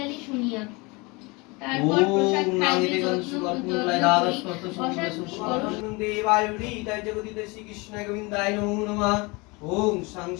শুনিয়া, তারপর প্রসাদ খাইবে যত্ন ওম সাং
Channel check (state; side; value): quieter; right; 26.4 dB